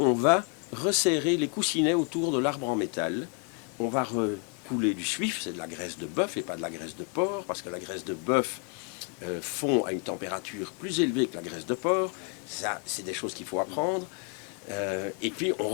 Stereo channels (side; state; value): right; quieter; 37.3 dB